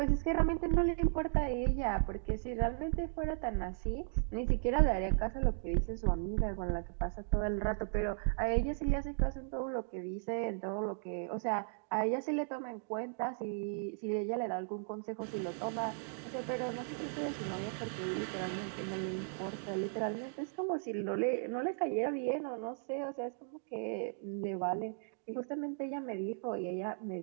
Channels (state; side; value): silent; left; digital silence